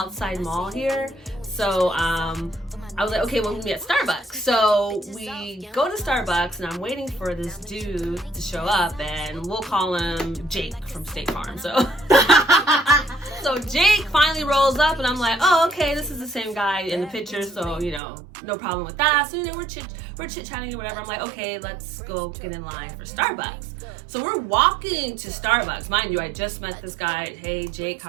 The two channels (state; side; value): drops out; left; at 18.0 s